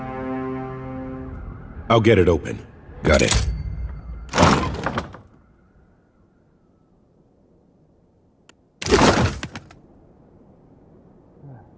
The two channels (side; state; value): both; identical; correlation 1.00